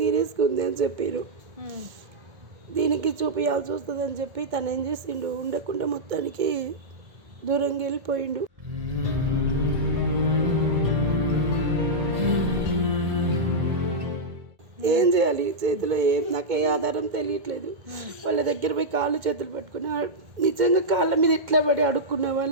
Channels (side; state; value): left; late; 1.8 ms